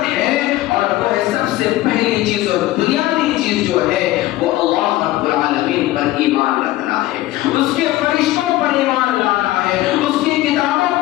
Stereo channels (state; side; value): quieter; right; 16.4 dB